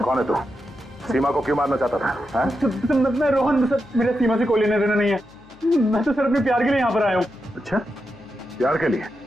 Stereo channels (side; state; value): left; noise; hum, 26 dB below the sound